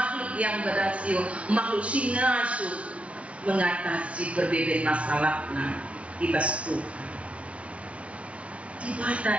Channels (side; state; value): left; late; 0.063 ms